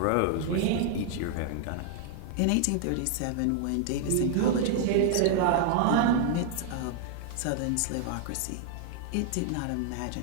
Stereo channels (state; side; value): different; both; correlation 0.00